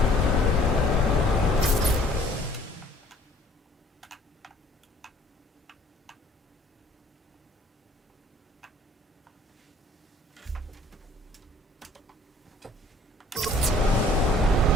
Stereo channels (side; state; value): both; normal; correlation 0.56